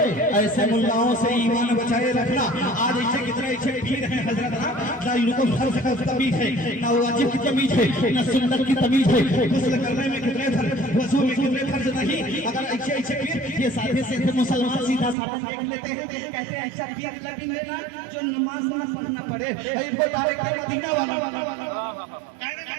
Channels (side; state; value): left; drops out; at 15.2 s